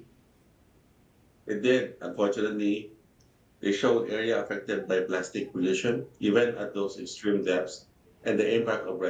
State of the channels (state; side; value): identical; both; correlation 1.00